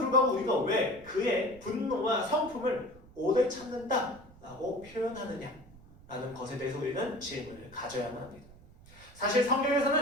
우리가 왜 그의 분노와 성품을 오래 참는다라고 표현하느냐 라는 것에 대해서 우리는 질문을 가져야만 합니다. 사실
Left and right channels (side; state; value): right; noise; rumble, 22 dB below the sound